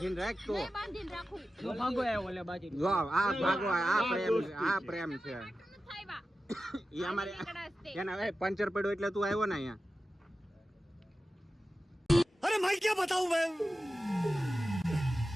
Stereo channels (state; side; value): normal; both; correlation 0.93